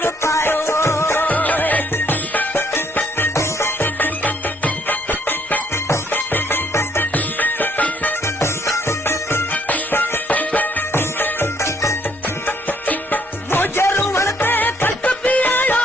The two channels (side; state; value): both; normal; correlation 0.67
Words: मुझे रुअण ते खलक भी आयो